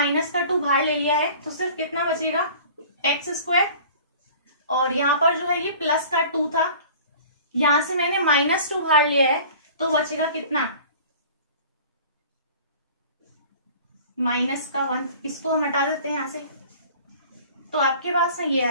का 2 बाहर ले लिया है, तो सिर्फ कितना बचेगा x²। और यहाँ पर जो है ये प्लस का 2 था, यहां से मैंने -2 बाहर लिया है, तो बचेगा कितना, माइनस का 1। इसको हम हटा देते हैं यहां से, तो आपके पास में ये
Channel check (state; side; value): inverted; both; correlation -0.45